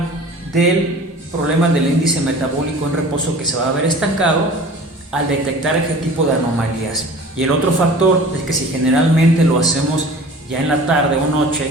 del problema del índice metabólico en reposo, que se va a ver estancado al detectar este tipo de anomalías. Y el otro factor es que si generalmente lo hacemos ya en la tarde o noche,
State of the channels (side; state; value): both; normal; correlation 0.43